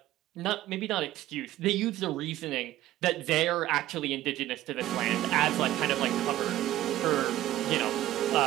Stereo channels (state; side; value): quieter; left; 14.6 dB